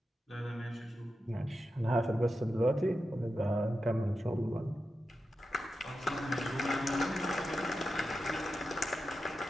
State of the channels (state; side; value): normal; both; correlation 0.90